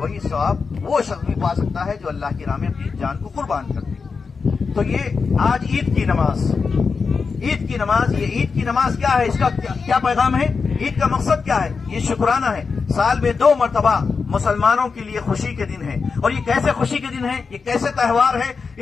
ثواب وہ شخص بھی پا سکتا ہے جو اللہ کی راہ میں اپنی جان کو قربان کر دے۔ تو یہ آج عید کی نماز، عید کی نماز، یہ عید کی نماز کیا ہے، اس کا کیا پیغام ہے، عید کا مقصد کیا ہے؟ یہ شکرانہ ہے، سال میں 2 مرتبہ مسلمانوں کے لیے خوشی کے دن ہے۔ اور یہ کیسے خوشی کے دن ہے، یہ کیسے تہوار ہے؟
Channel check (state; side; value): quieter; right; 5.0 dB